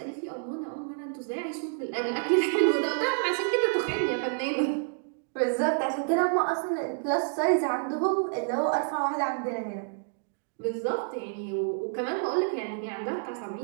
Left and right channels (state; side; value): silent; left; digital silence